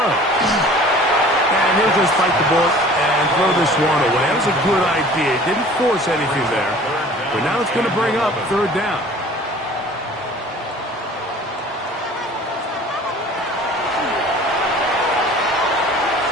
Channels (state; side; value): normal; both; correlation 0.47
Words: And he'll just bite the bullet and throw this one away. That was a good idea. Didn't force anything there. But now it's going to bring up 3rd down.